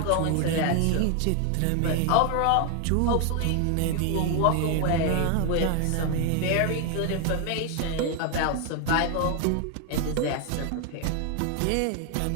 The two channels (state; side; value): different; both; correlation 0.00